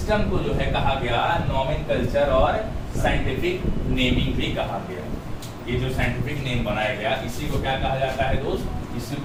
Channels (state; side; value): identical; both; correlation 1.00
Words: को जो है कहा गया नोमेनकल्चर और साइंटिफिक नेमिंग भी कहा गया। ये जो साइंटिफिक नेम बनाया गया इसी को क्या कहा जाता है दोस्त? इसी